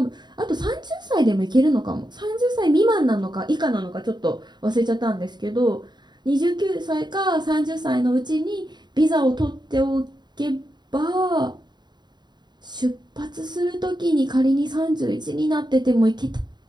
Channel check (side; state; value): left; late; 0.21 ms